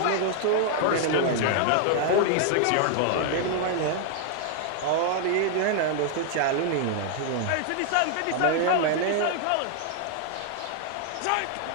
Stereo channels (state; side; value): different; both; correlation 0.00